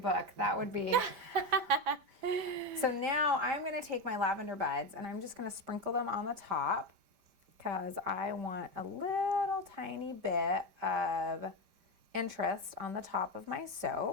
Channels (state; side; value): late; left; 5.1 ms